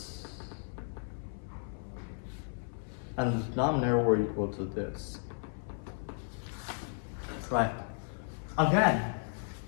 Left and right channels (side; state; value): right; silent; 55 dB below the other